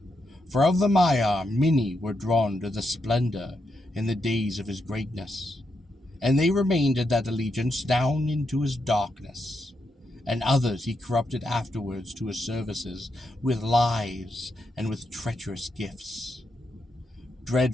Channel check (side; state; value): both; normal; correlation 0.83